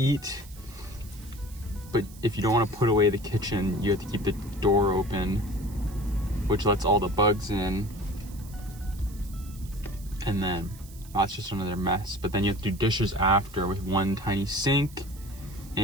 But if you don't want to put away the kitchen, you have to keep the door open, which lets all the bugs in. And then that's just another mess. But then you have to do dishes after with one tiny sink.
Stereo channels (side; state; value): right; noise; hiss, 21 dB below the sound